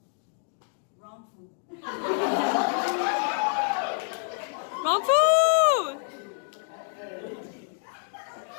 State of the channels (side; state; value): right; silent; 60 dB below the other